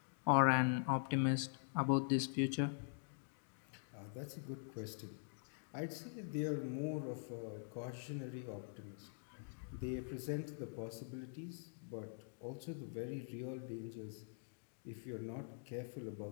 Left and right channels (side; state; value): right; silent; digital silence